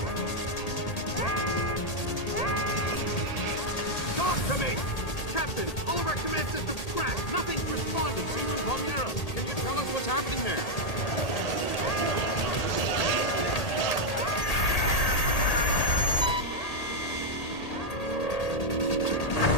Talk to me! Captain, all of our command systems crashed. Nothing's responding. Seaman Palmieri, can you tell us what's happening there?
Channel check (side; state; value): right; late; 1.8 ms